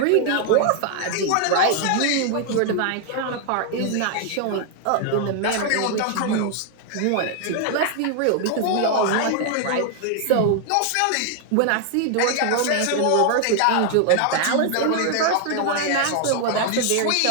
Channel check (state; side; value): different; both; correlation 0.00